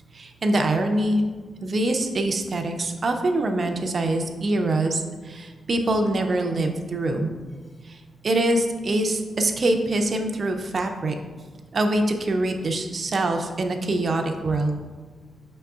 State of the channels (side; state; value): both; normal; correlation 0.85